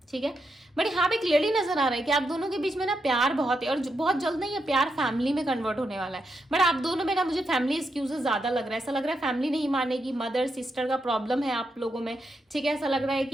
ठीक है, बट यहाँ पे क्लियरली नजर आ रहा है कि आप दोनों के बीच में ना प्यार बहुत है, और बहुत जल्द ना ये प्यार फैमिली में कन्वर्ट होने वाला है। बट आप दोनों में ना मुझे फैमिली एक्सक्यूजेस ज्यादा लग रहा है, ऐसा लग रहा है फैमिली नहीं मानेगी, मदर सिस्टर का प्रॉब्लम है आप लोगों में, ठीक है, ऐसा लग रहा है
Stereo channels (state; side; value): normal; both; correlation 0.83